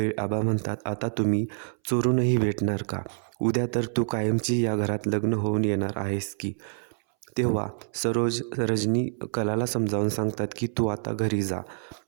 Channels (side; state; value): left; silent; 60 dB below the other